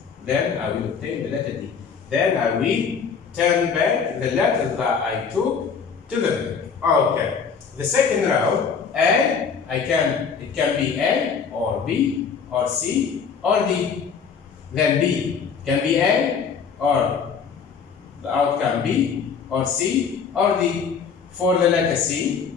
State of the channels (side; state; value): right; quieter; 6.2 dB